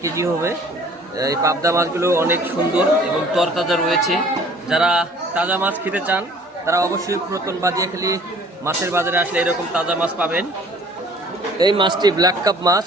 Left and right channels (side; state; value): both; normal; correlation 0.52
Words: কেজি হবে। এই পাবদা মাছগুলো অনেক সুন্দর এবং তরতাজা রয়েছে। যারা তাজা মাছ খেতে চান তারা অবশ্যই পুরাতন বাদিয়াখালী মাছের বাজারে আসলে এরকম তাজা মাছ পাবেন। এই মাছটি ব্ল্যাক কাপ মাছ,